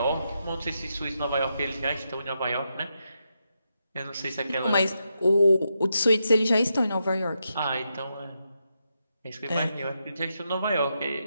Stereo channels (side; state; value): both; inverted; correlation -0.84